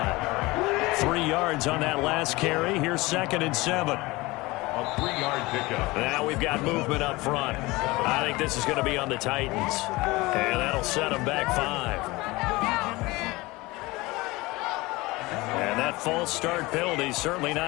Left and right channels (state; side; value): quieter; right; 21.7 dB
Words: 3 yards on that last carry. Here's 2nd and 7. A 3-yard pickup. Now we've got movement up front. I think this is going to be on the Titans. And that'll set them back 5. And that false start penalty certainly